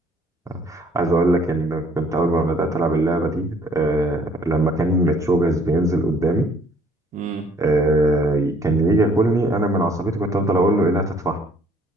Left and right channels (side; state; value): both; normal; correlation 0.60